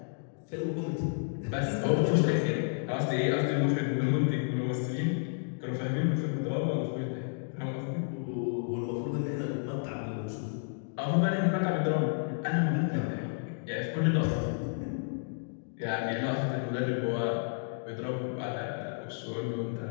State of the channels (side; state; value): right; silent; digital silence